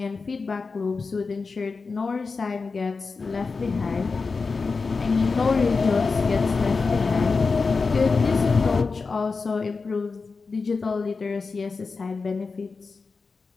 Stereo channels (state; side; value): quieter; right; 4.5 dB